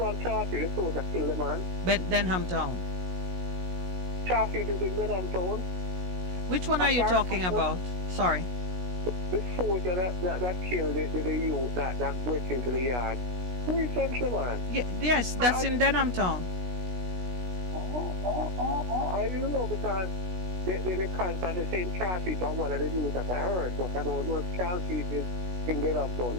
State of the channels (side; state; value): left; late; 16 ms